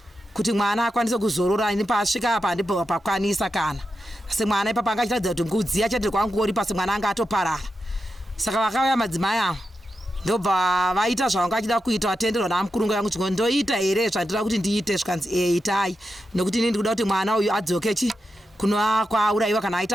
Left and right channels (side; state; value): both; normal; correlation 0.88